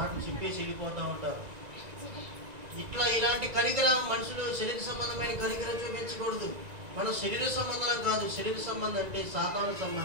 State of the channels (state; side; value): late; left; 1.9 ms